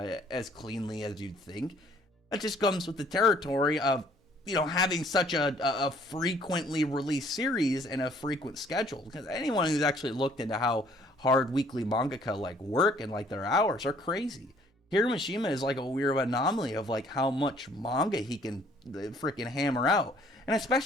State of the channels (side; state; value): both; normal; correlation 0.60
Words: cleanly as you'd think. That just comes with the territory of having such a frequently released series and a frequent schedule. Because anyone who's actually looked into how hard weekly mangaka like work and like their hours are crazy. Hiroshima is like a weird anomaly of like how much manga he can freaking hammer out, and